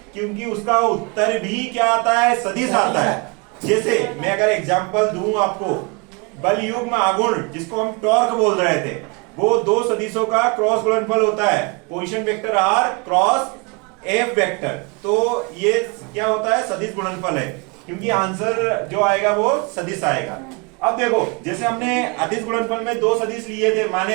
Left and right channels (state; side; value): quieter; left; 30.1 dB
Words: क्योंकि उसका उत्तर भी क्या आता है, सदिश आता है। जैसे मैं अगर एग्जांपल दूं आपको, बल युग्म आघूर्ण जिसको हम टॉर्क बोल रहे थे, वो दो सदिशों का क्रॉस गुणनफल होता है, position vector R cross F vector. तो ये क्या होता है, सदिश गुणनफल है, क्योंकि आंसर जो आएगा वो सदिश आएगा। अब देखो, जैसे हमने अदिश गुणनफल में दो सदिश लिए थे,